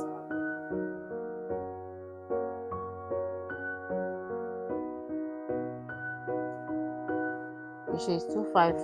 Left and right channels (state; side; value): identical; both; correlation 1.00